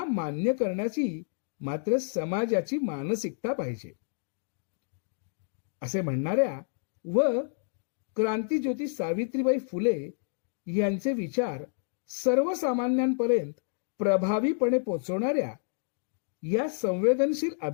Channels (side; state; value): right; silent; digital silence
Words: मान्य करण्याची मात्र समाजाची मानसिकता पाहिजे. असे म्हणणाऱ्या व क्रांतीज्योती सावित्रीबाई फुले यांचे विचार सर्वसामान्यांपर्यंत प्रभावीपणे पोचवणाऱ्या या संवेदनशील